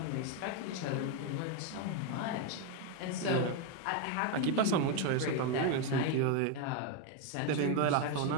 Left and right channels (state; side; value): different; both; correlation 0.02